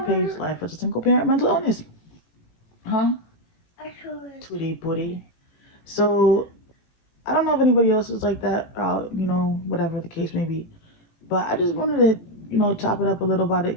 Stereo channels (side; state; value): right; late; 18 ms